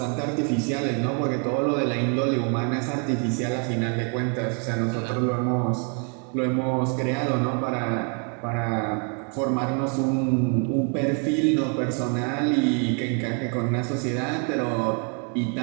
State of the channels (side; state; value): left; quieter; 39.2 dB